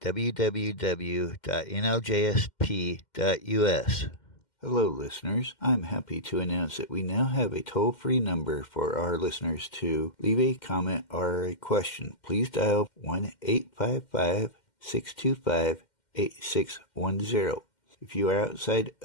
Hello, listeners. I'm happy to announce that we now have a toll-free number for our listeners to leave a comment or a question. Please dial 1-855-625-8610. If you are outside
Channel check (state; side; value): late; right; 2.1 ms